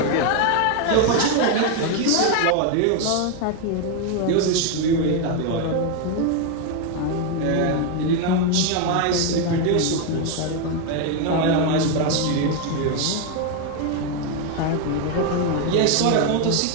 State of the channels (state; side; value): different; both; correlation 0.01